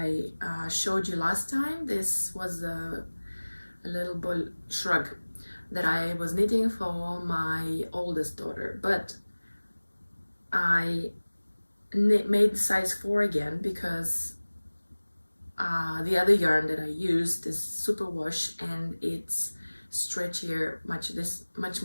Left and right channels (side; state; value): both; inverted; correlation -1.00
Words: showed you last time. This was a little bull shrug that I was knitting for my oldest daughter, but I made size 4 again because the other yarn that I used is superwash, and it's stretchier, much